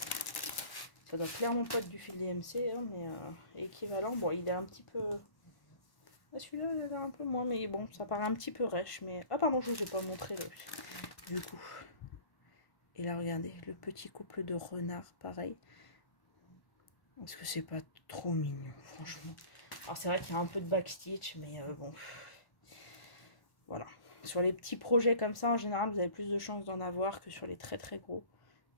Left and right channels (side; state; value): right; late; 1.1 ms